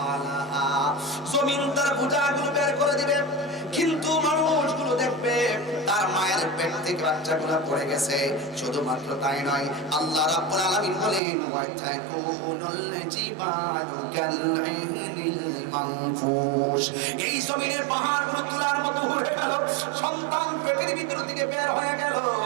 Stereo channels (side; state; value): left; drops out; at 11.2 s